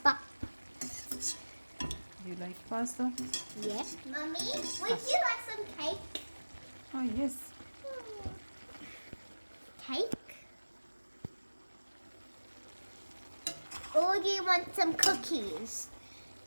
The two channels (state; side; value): inverted; both; correlation -1.00